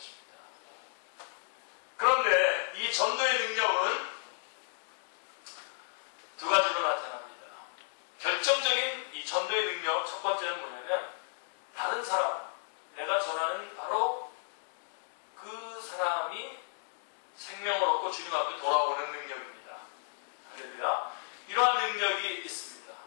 그런데 이 전도의 능력은 두 가지로 나타납니다. 결정적인 이 전도의 능력 첫 번째는 뭐냐면 다른 사람, 내가 전하는 바로 그 사람이 생명을 얻고 주님 앞에 돌아오는 능력입니다. 할렐루야. 이러한 능력이 있습니다.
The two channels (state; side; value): silent; right; digital silence